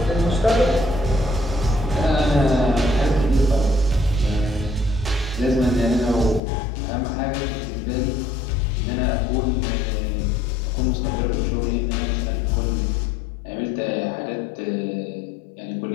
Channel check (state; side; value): drops out; right; at 6.4 s